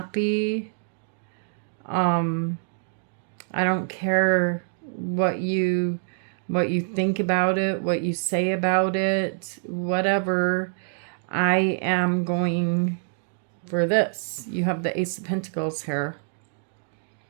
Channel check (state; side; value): silent; left; digital silence